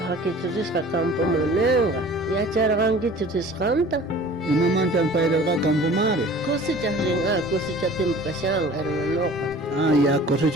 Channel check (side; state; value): both; normal; correlation 0.45